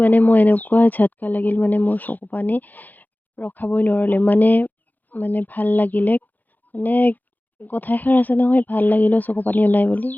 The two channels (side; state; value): right; late; 0.084 ms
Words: মানে মই এনেকুৱা ঝটকা লাগিল মানে মোৰ চকু পানী ৰখাবই নোৱাৰিলে মানে ভাল লাগিলে মানে কথা এষাৰ আছে নহয় ভাল লাগিলেও চকু পানী ওলাই বুলি